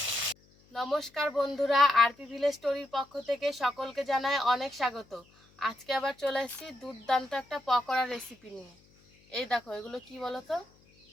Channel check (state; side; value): noise; left; hum, 30 dB below the sound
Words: নমস্কার বন্ধুরা, আরপি ভিলেজ স্টোরির পক্ষ থেকে সকলকে জানাই অনেক স্বাগত। আজকে আবার চলে এসেছি দুর্দান্ত একটা পকোড়া রেসিপি নিয়ে। এই দেখো, এগুলো কি বলো তো,